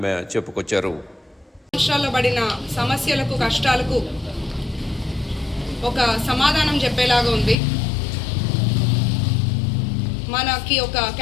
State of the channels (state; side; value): drops out; right; at 7.6 s